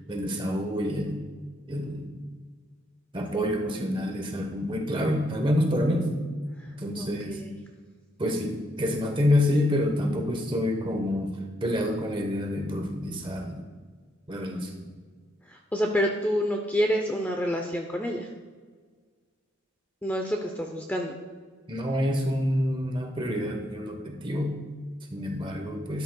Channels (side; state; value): both; normal; correlation 0.76